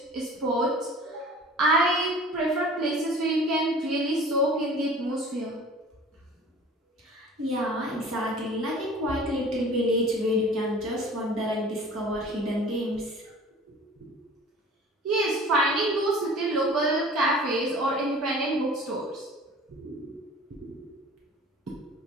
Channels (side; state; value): both; normal; correlation 0.45